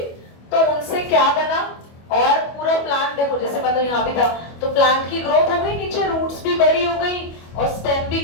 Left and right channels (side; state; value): right; late; 25 ms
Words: तो उनसे क्या बना, और पूरा प्लांट देखो जैसे मतलब यहाँ भी था, तो प्लांट की ग्रोथ हो गई, नीचे रूट्स भी बड़ी हो गई और स्टेम भी